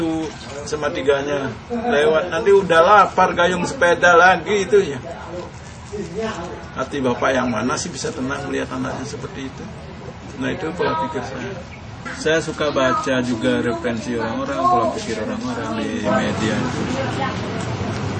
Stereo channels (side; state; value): both; identical; correlation 1.00